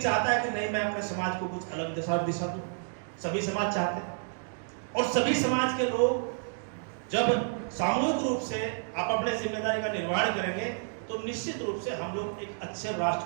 है कि नहीं मैं अपने समाज को कुछ अलग दिशा दूं। सभी समाज चाहते हैं और सभी समाज के लोग जब सामूहिक रूप से आप अपने जिम्मेदारी का निर्वहन करेंगे तो निश्चित रूप से हम लोग एक अच्छे राष्ट्र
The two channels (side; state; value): left; silent; digital silence